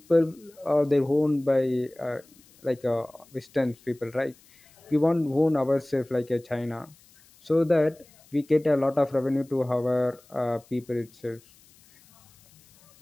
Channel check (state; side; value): noise; left; hiss, 28 dB below the sound